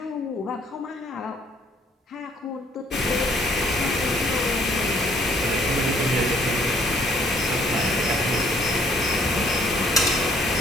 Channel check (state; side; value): normal; both; correlation 0.63